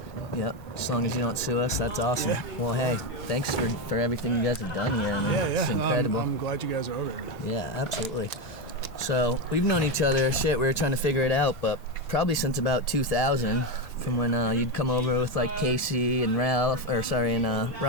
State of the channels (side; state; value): both; normal; correlation 0.12